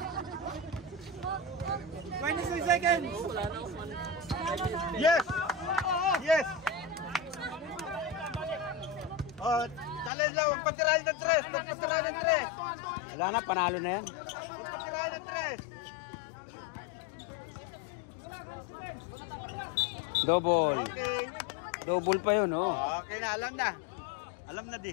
26 seconds! Yes! Oh, challenge lang, magpatirahin ng tres! Wala na, panalo na yan. Magpatirahin ng tres! Double. Okay. Double pa yun, oh. Okay na, alam na. Alam na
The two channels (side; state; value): right; drops out; at 10.1 s